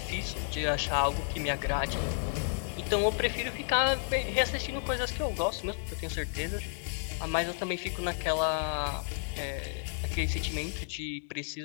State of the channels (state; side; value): silent; right; digital silence